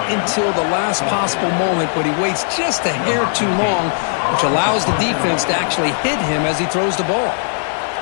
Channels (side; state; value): right; silent; digital silence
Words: until the last possible moment, but he waits just a hair too long, which allows the defense to actually hit him as he throws the ball.